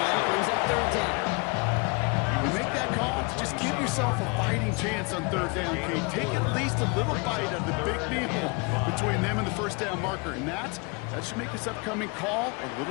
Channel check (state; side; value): quieter; right; 30.5 dB